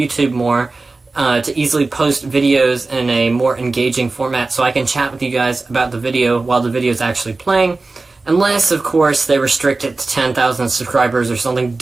more, to easily post videos in a more engaging format so I can chat with you guys about the video while the video is actually playing, unless, of course, they restrict it to 10,000 subscribers or something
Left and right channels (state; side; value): quieter; left; 3.5 dB